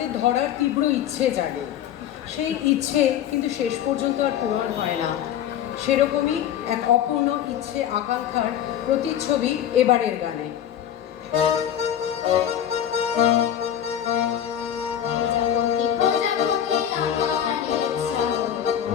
ধরার তীব্র ইচ্ছে জাগে। সেই ইচ্ছে কিন্তু শেষ পর্যন্ত আর পূরণ হয় না। সেরকমই এক অপূর্ণ ইচ্ছে আকাঙ্ক্ষার প্রতিচ্ছবি এবারের গানে।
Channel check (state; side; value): quieter; right; 10.2 dB